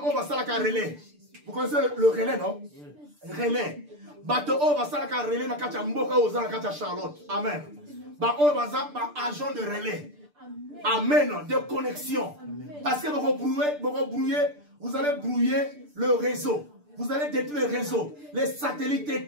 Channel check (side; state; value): left; late; 6.8 ms